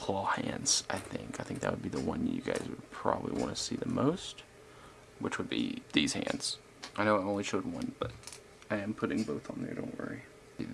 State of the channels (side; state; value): both; identical; correlation 1.00